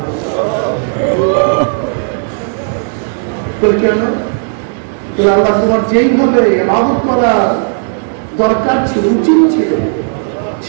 কেন? আল্লাহ তোমার যেইভাবে ইবাদত করা দরকার ছিল, উচিত ছিল,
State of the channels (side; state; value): left; silent; digital silence